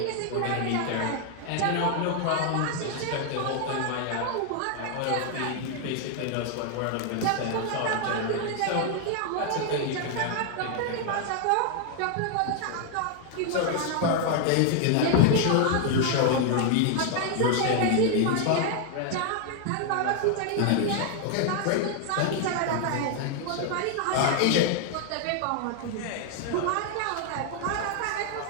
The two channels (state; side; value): different; both; correlation 0.00